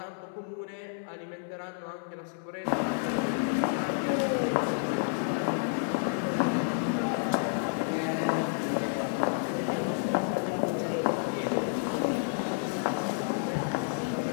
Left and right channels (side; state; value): right; silent; digital silence